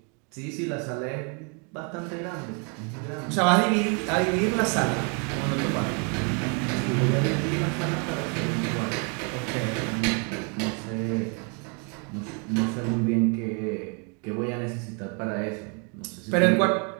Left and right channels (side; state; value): left; quieter; 36.8 dB